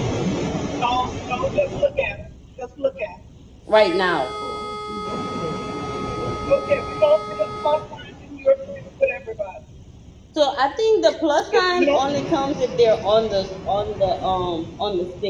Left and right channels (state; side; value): identical; both; correlation 1.00